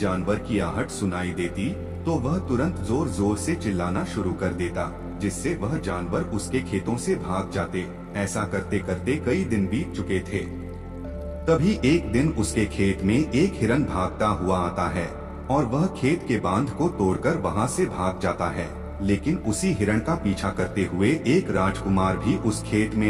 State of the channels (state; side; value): identical; both; correlation 1.00